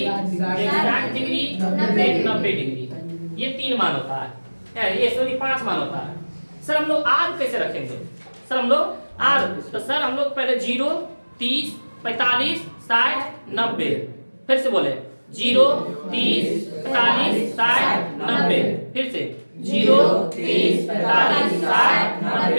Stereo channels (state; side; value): inverted; both; correlation -1.00